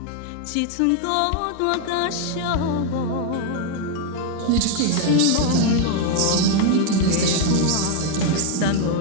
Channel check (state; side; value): different; both; correlation 0.00